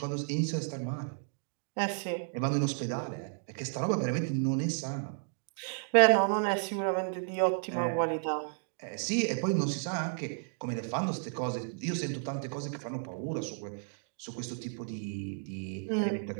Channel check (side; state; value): left; silent; digital silence